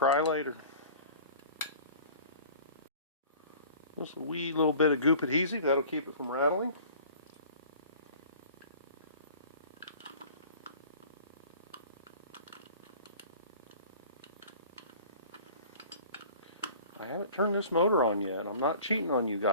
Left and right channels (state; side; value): inverted; both; correlation -0.45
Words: later. Just a wee little bit of goop adhesive, that'll keep it from rattling. I haven't turned this motor on yet. I'm not cheating on you